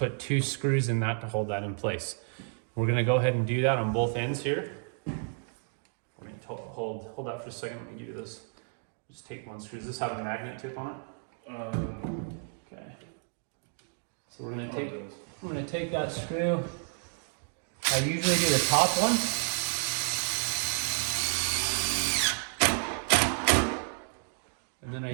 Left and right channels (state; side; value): silent; left; 57 dB below the other